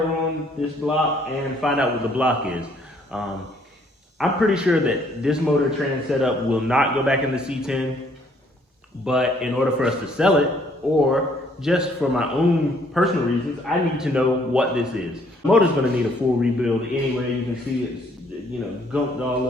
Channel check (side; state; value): both; normal; correlation 0.64